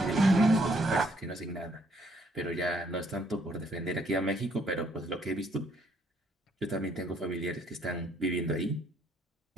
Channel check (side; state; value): both; normal; correlation 0.67